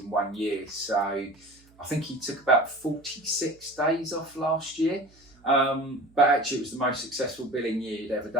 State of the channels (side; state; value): right; noise; hum, 29 dB below the sound